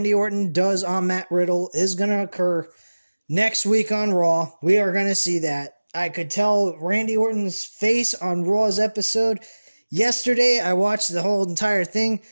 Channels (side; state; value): both; inverted; correlation -1.00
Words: Orton does on Matt Riddle is going to occur next week on Raw. We are going to see that. I could tell Randy Orton's face on Raw's episode. Yesterday, I watched the whole entire thing.